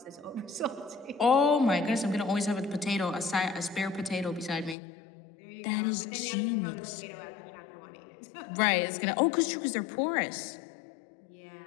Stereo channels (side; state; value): right; drops out; at 4.8 s